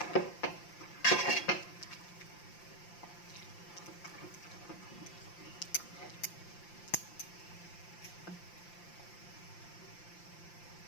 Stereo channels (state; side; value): late; right; 5.8 ms